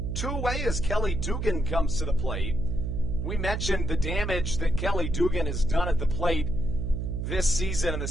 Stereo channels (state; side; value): noise; right; hum, 2 dB below the sound